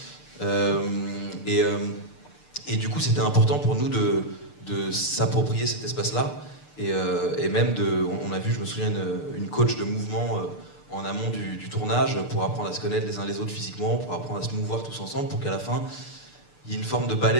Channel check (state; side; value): late; right; 6.7 ms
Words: Et du coup, c'était important pour nous de s'approprier cet espace-là. Et même on a vu, je me souviens, une coach de mouvement en amont du tournage pour apprendre à se connaître les uns les autres physiquement, pour apprendre à se mouvoir tous ensemble, pour qu'à la fin, il y ait une forme de